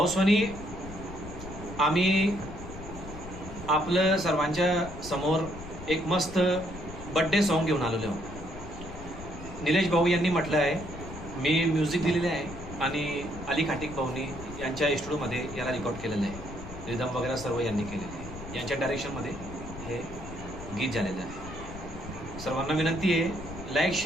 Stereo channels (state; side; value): noise; left; rumble, 12 dB below the sound